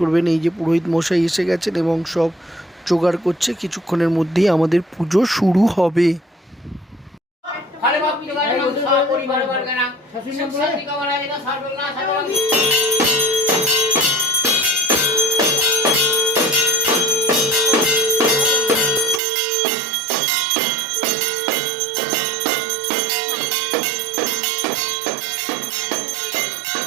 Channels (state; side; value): drops out; left; at 19.2 s